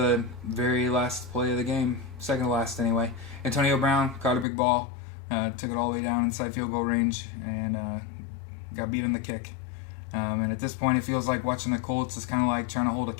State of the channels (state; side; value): drops out; right; at 4.5 s